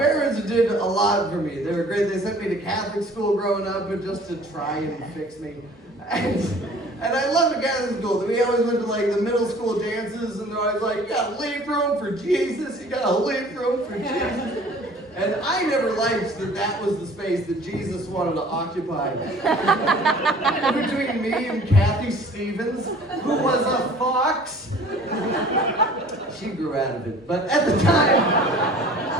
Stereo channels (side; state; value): both; normal; correlation 0.49